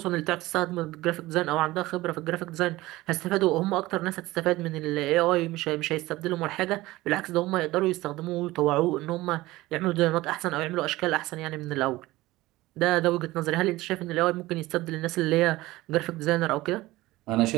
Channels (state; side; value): quieter; left; 18.5 dB